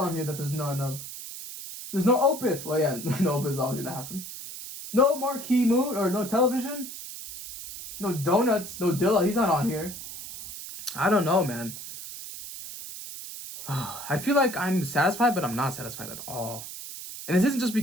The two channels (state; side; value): noise; right; hiss, 11 dB below the sound